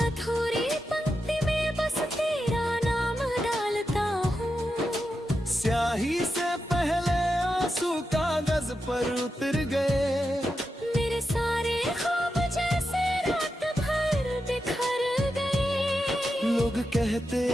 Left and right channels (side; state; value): both; normal; correlation 0.88